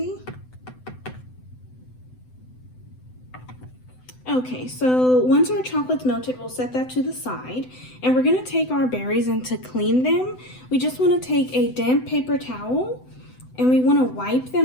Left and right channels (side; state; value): right; late; 7.9 ms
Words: Okay, so once our chocolate's melted, we'll set that to the side, and we're gonna take our berries, and to clean them, we just wanna take a damp paper towel, and we wanna wipe